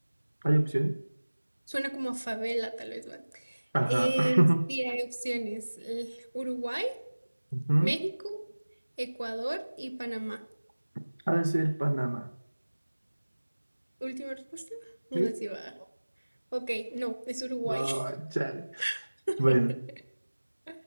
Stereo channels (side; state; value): both; inverted; correlation -1.00